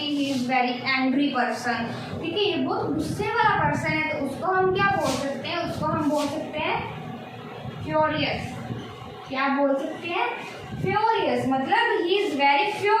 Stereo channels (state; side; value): identical; both; correlation 1.00